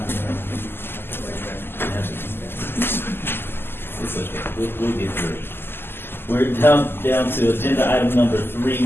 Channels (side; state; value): right; late; 0.11 ms